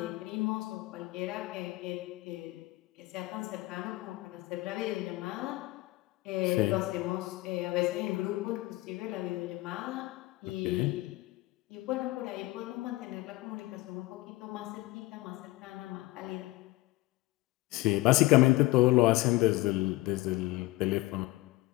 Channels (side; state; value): right; quieter; 19.7 dB